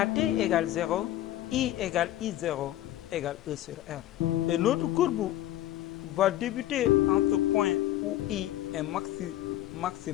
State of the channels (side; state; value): right; quieter; 13.7 dB